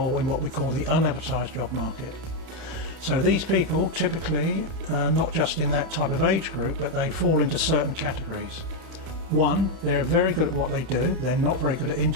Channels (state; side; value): late; left; 31 ms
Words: in what we call the unadvertised job market. So these people typically, not just in that type of age group, but they fall into certain categories. One, they're very good at what they do. They're not very good at